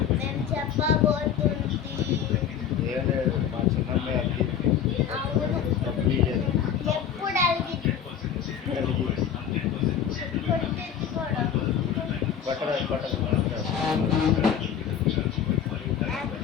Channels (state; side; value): quieter; right; 8.5 dB